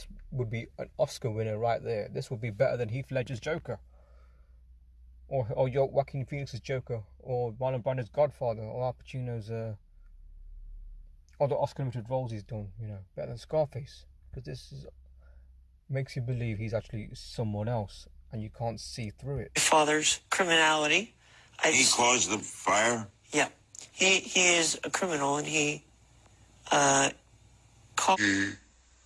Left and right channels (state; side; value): identical; both; correlation 1.00